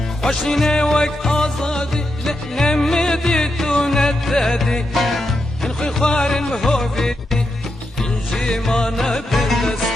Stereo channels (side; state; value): both; normal; correlation 0.85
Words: خوشني وك آزادي نمديت ونددي انخي خوار بهوفي انجي ما